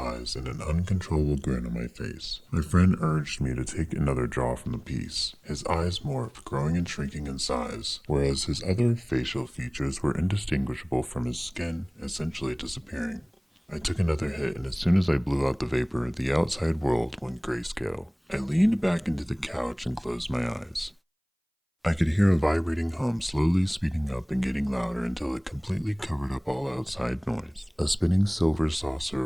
and an uncontrollable grin on my face. My friend urged me to take another draw from the piece. His eyes morphed, growing and shrinking in size, whereas his other facial features were indistinguishable from his skin, essentially disappearing. I took another hit, and as soon as I blew out the vapor, the outside world went grayscale. I leaned back into the couch and closed my eyes. I could hear a vibrating hum slowly speeding up and getting louder until it completely covered up all outside noise. A spinning silver saucer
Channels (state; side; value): identical; both; correlation 1.00